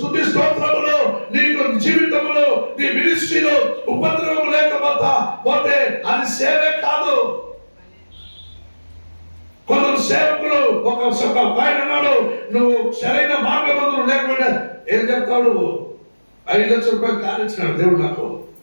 స్తోత్రములో, నీకు జీవితంలో, నీ మినిస్ట్రీలో ఉపద్రవం లేకపోతే అది సేవే కాదు. కొందరు సేవకులు ఒక ఆయన అన్నాడు, నువ్వు సరైన మార్గబంధులు లేకపోయినా ఏం చెప్తాడు? 5 లక్షల రూపాయలు కానిచ్చినాడు దేవుడు నాకు.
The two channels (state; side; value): inverted; both; correlation -1.00